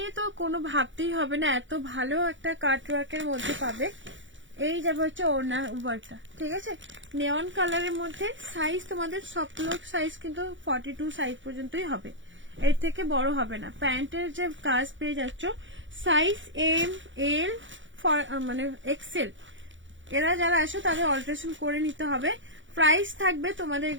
তো কোনো ভাবতেই হবে না, এত ভালো একটা কাট ওয়ার্কের মধ্যে পাবে। এই যাবে হচ্ছে ওড়না ওয়ার্কটা, ঠিক আছে। নেওয়ান কালারের মধ্যে সাইজ তোমাদের সবগুলো সাইজ কিন্তু 42 সাইজ পর্যন্তই হবে, এর থেকে বড় হবে না। প্যান্টের যে কাজ পেয়ে যাচ্ছ সাইজ এম এল মানে এক্সেল, এরা যারা আসো তাদের অল্টারেশন করে নিতে হবে। প্রাইস থাকবে তোমাদের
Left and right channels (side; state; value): left; late; 0.55 ms